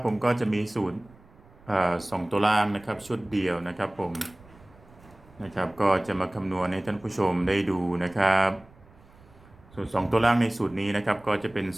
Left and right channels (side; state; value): right; noise; rumble, 25 dB below the sound